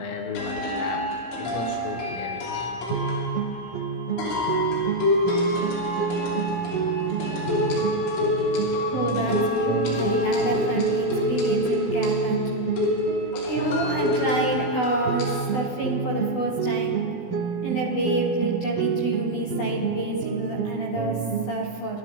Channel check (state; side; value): late; right; 16 ms